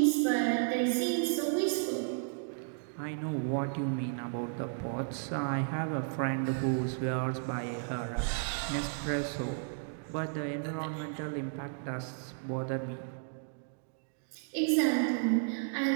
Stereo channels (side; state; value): left; silent; digital silence